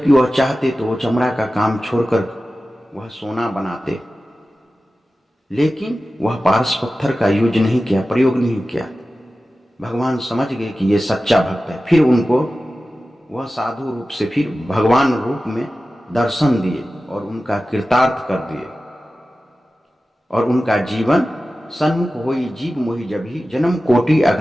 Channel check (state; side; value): normal; both; correlation 0.95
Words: वह चाहते तो वो चमड़ा का काम छोड़कर वह सोना बनाते, लेकिन वह पारस पत्थर का यूज नहीं किया, प्रयोग नहीं किया। भगवान समझ गए कि ये सच्चा भक्त है। फिर उनको वह साधु रूप से फिर भगवान रूप में दर्शन दिए और उनका कृतार्थ कर दिए, और उनका जीवन सन्मुख होई जीव मोहि जभी, जन्म कोटि